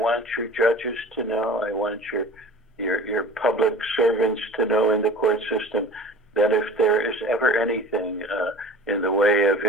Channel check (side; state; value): both; normal; correlation 0.40